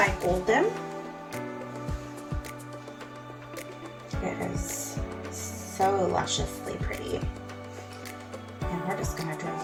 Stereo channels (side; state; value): both; identical; correlation 1.00